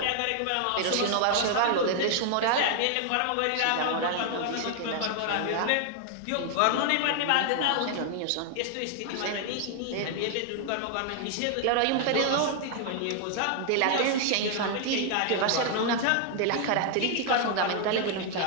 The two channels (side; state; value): both; different; correlation 0.00